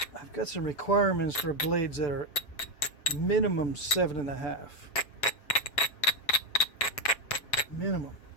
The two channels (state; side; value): late; right; 7.1 ms